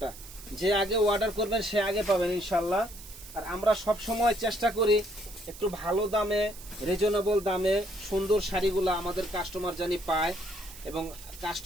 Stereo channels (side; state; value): right; noise; hiss, 16 dB below the sound